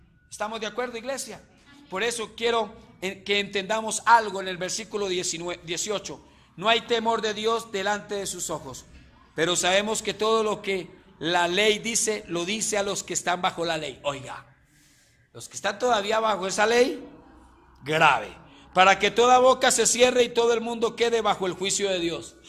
¿Estamos de acuerdo, iglesia? Por eso quiero que entendamos algo en el versículo 18. No hay temor de Dios delante de sus ojos, pero sabemos que todo lo que la ley dice, lo dice a los que están bajo la ley. Oiga, los que están todavía bajo esa ley, grave, para que toda boca se cierre y todo el mundo quede bajo el juicio de Dios.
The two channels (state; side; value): identical; both; correlation 1.00